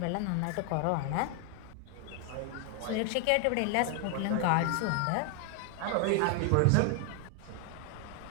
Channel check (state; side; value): different; both; correlation 0.00